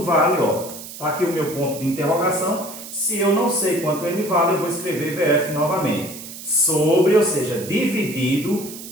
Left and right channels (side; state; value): right; noise; hiss, 13 dB below the sound